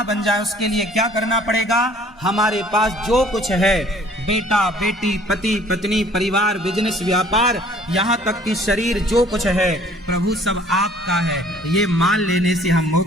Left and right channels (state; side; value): normal; both; correlation 0.55